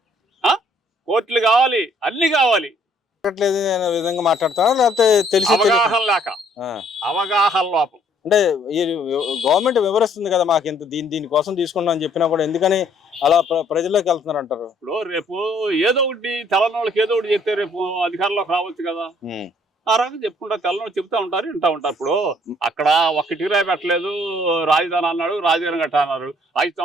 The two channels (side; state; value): both; normal; correlation 0.63